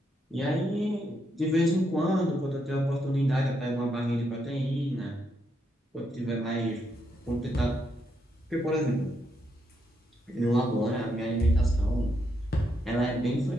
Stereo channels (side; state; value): both; normal; correlation 0.79